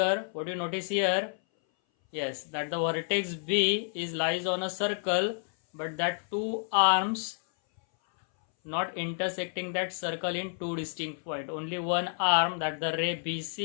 what you notice here? Yes, that the vertex B is lies on a circle, but that two arms not intersecting that circle in two distinct points. Only one arm, that the ray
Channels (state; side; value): silent; right; 58 dB below the other